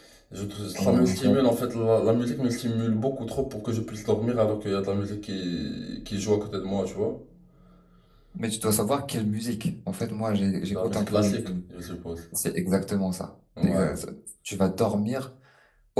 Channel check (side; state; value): both; identical; correlation 1.00